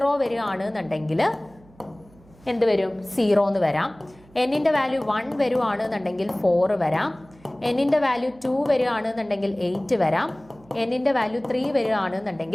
വരികയാണ് എന്നുണ്ടെങ്കിൽ എന്ത് വരും, 0 എന്ന് വരാം. എന്നിന്റെ വാല്യൂ 1 വരുവാണെന്നുണ്ടെങ്കിൽ 4 വരാം. എന്നിന്റെ വാല്യൂ 2 വരികയാണെന്നുണ്ടെങ്കിൽ 8 വരാം. എന്നിന്റെ വാല്യൂ 3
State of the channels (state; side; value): noise; right; hum, 27 dB below the sound